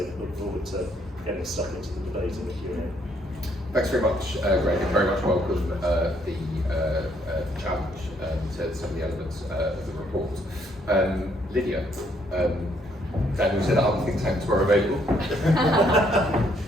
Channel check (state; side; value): normal; both; correlation 0.69